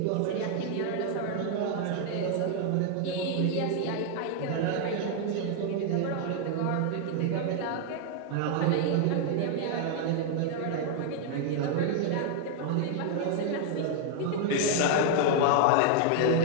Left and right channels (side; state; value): both; different; correlation 0.00